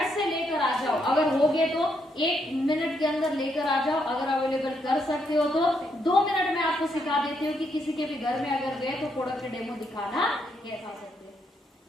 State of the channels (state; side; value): normal; both; correlation 0.76